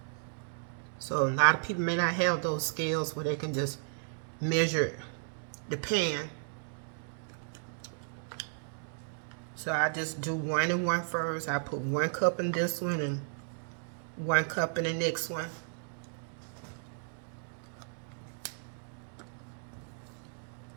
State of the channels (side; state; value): left; silent; digital silence